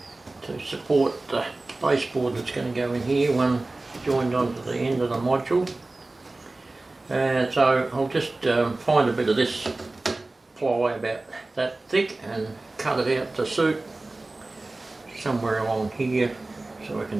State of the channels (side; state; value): left; quieter; 3.1 dB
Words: to support the baseboard that's going to go in here, one joined onto the end of the module. So I'll just find a bit of this ply about that thick and cut it out to suit somewhere along here, so I